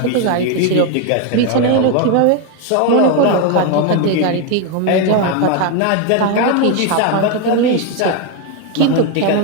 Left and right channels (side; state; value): both; different; correlation 0.01